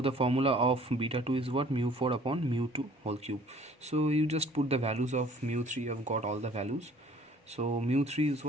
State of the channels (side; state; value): both; normal; correlation 0.54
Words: formula of beta 2 is what? mu4 upon mu2 whole cube. So you just put the values of mu3. You have got all the values. So mu3 is